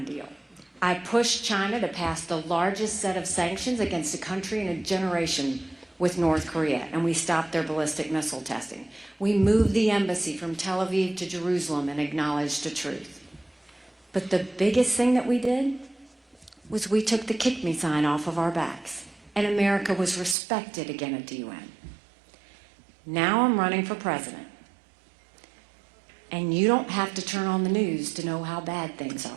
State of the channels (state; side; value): drops out; left; at 20.4 s